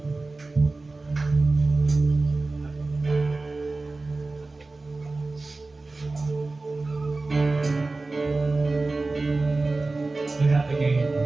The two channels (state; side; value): quieter; left; 3.4 dB